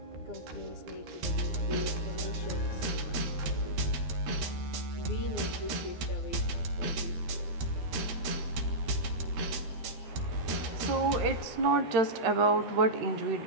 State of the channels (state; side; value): late; left; 13 ms